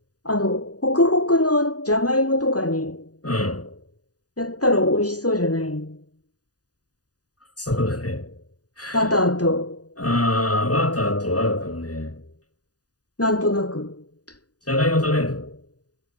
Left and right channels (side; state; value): right; late; 0.68 ms